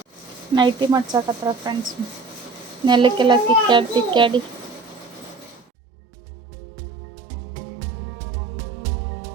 ನೈಟಿ ಮಾಡ್ಸಕತ್ರ ಫ್ರೆಂಡ್ಸ್, ನೆಲಕ್ಕೆಲ್ಲ ತಿಕ್ಕಾಡಿ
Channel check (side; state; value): left; drops out; at 5.7 s